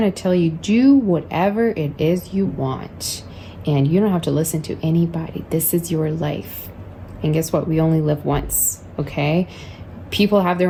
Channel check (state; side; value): identical; both; correlation 1.00